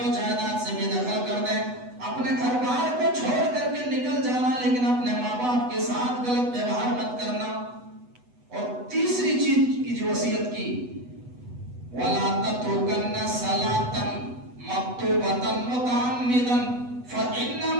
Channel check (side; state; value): left; late; 8.1 ms